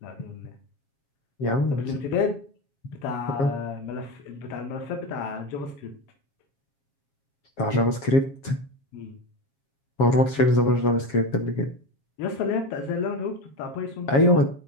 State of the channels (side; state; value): right; late; 7.3 ms